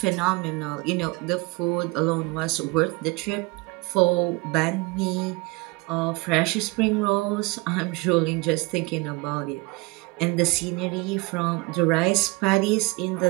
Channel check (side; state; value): left; quieter; 25.3 dB